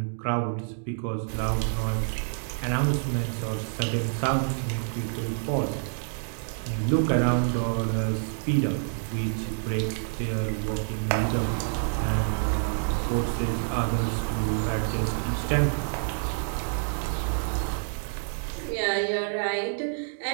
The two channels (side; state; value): left; silent; digital silence